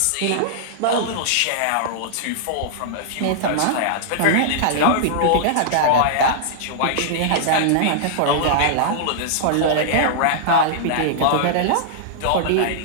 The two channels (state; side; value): different; both; correlation -0.02